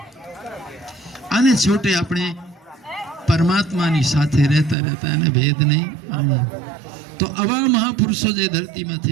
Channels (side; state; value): left; drops out; at 4.8 s